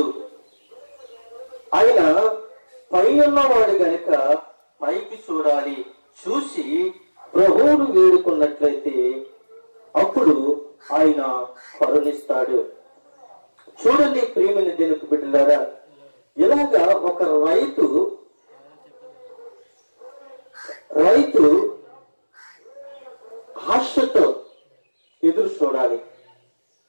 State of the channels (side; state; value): both; inverted; correlation -1.00